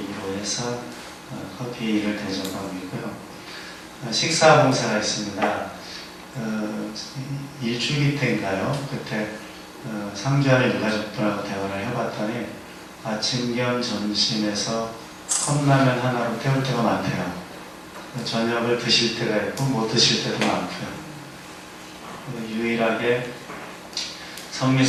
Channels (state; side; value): identical; both; correlation 1.00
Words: 해서 커피를 대접하고 있고요. 식사 봉사가 있습니다. 일주기 때인가요? 그때 상주하는 유가족들하고 대화를 해봤더니 아침 겸 점심에서 컵라면 하나로 때울 때가 많대요. 저녁을 드실 때가 있고 못 드실 때도 많고요. 유일하게